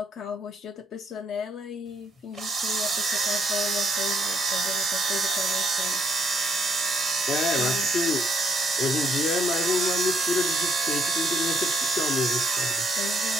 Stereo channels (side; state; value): both; normal; correlation 0.70